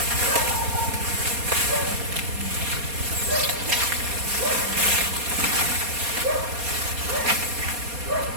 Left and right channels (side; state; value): left; late; 4.2 ms